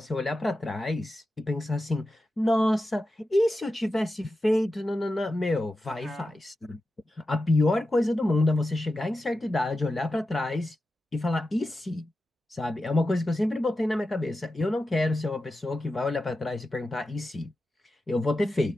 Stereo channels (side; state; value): both; normal; correlation 0.91